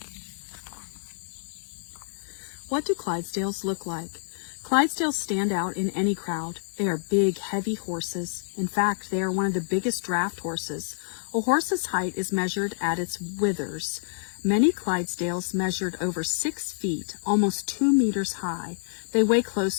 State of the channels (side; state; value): right; silent; 60 dB below the other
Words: What do Clydesdales look like? Clydesdales stand out in any crowd. They are big, heavy horses. In fact, they are one of the biggest draft horses. A horse's height is measured at its withers. Many Clydesdales measured over 6 feet, almost 2 meters high. They weigh